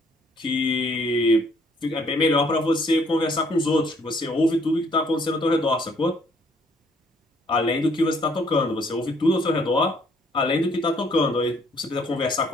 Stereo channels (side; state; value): both; normal; correlation 0.64